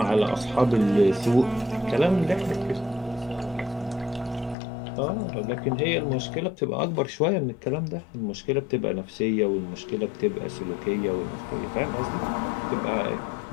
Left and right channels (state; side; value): drops out; right; at 4.5 s